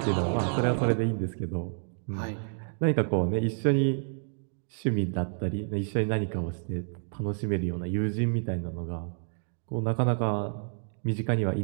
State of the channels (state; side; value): silent; left; digital silence